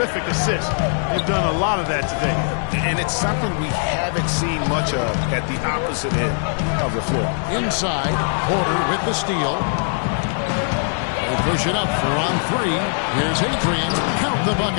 assist. They've done a lot of that today. And it's something we haven't seen much of at the opposite end of the floor. Inside, Porter with the steal. They push it up for on 3. Here's Adrian. Count the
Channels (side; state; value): right; silent; 61 dB below the other